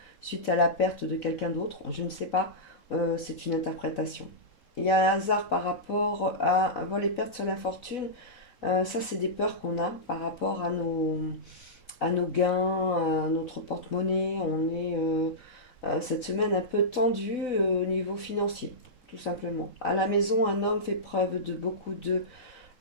suite à la perte de quelqu'un d'autre, je ne sais pas, c'est une interprétation. Il y a un hasard par rapport à vol et perte sur la fortune, ça c'est des peurs qu'on a par rapport à nos gains, à notre porte-monnaie, on est cette semaine un peu tendu au niveau financier, tout simplement. À la maison, un homme fait preuve de beaucoup de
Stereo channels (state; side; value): late; right; 4.0 ms